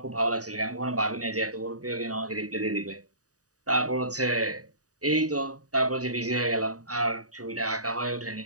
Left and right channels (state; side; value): late; left; 0.67 ms